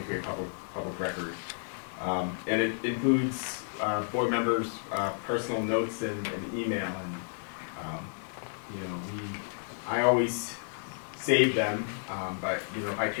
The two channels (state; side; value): silent; right; digital silence